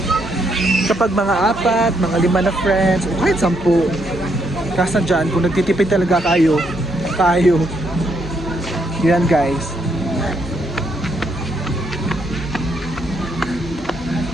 Kapag mga 4, mga 5 na friends, o kahit 10, kasi dyan, kung nagtitipid talaga kayo. Yan guys.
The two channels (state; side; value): normal; both; correlation 0.75